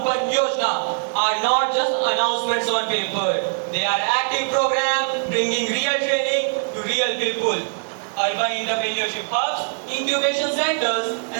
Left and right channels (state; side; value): silent; left; digital silence